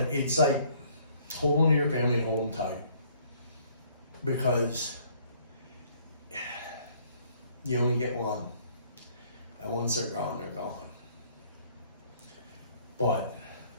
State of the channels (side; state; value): both; inverted; correlation -0.61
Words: it's like, hold on to your family and hold them tight. Because you only get one. And once they're gone, they're gone. But,